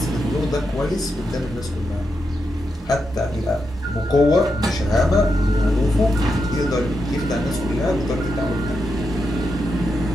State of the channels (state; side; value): normal; both; correlation 0.85